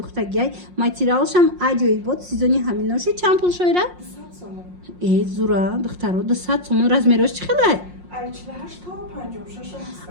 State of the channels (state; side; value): late; left; 5.6 ms